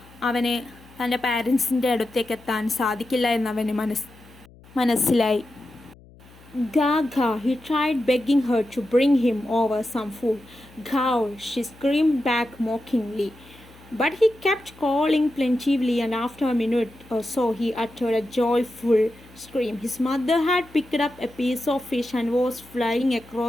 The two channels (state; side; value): noise; left; hum, 24 dB below the sound